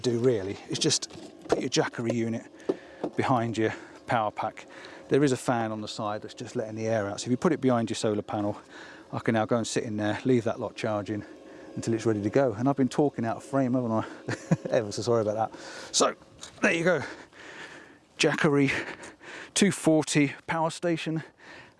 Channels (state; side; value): identical; both; correlation 1.00